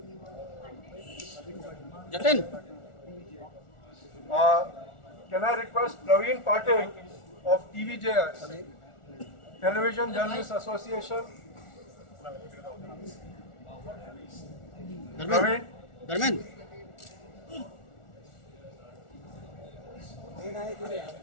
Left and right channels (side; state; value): right; late; 1.4 ms